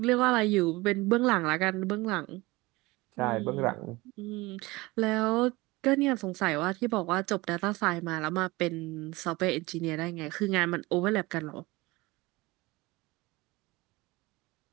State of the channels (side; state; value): left; quieter; 22.0 dB